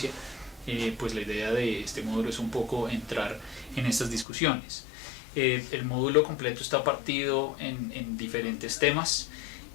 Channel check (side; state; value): right; drops out; at 4.2 s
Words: Pues la idea de este módulo es un poco entrar en estas discusiones. El módulo completo está partido en diferentes temas.